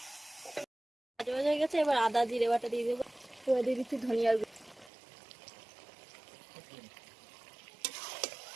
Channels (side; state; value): left; drops out; at 4.9 s